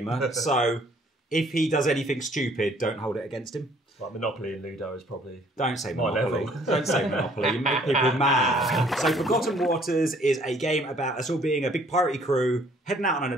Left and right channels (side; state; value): both; normal; correlation 0.60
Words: so if he does anything stupid, don't hold it against him. Like Monopoly and Ludo is probably Don't say my Monopoly. level. Don't say Monopoly. You make people mad. So Forgotten Waters is a game about us all being a big piratey crew, heading out on an